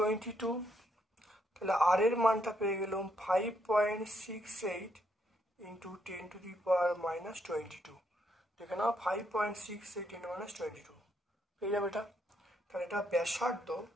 তাহলে আর এর মানটা পেয়ে গেলাম 5.68 × 10⁻22। দেখে নাও 5.68 × 10⁻22 পেয়ে যাবে এটা। তাহলে এটা ব্যাসার্ধ,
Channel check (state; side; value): normal; both; correlation 0.75